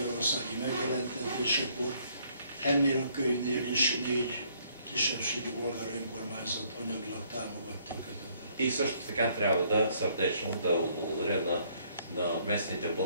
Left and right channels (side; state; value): both; inverted; correlation -0.65